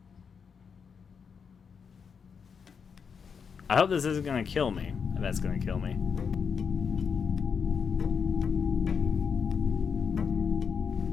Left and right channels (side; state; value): right; quieter; 6.2 dB